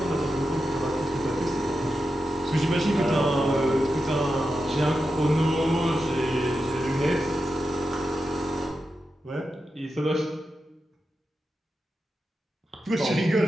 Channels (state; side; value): normal; both; correlation 0.89